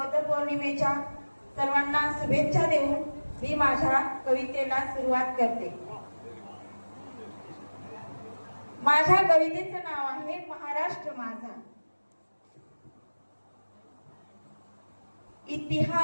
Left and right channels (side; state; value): both; inverted; correlation -1.00